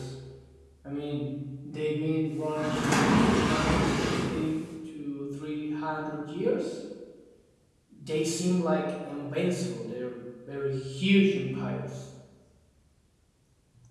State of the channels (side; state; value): both; identical; correlation 1.00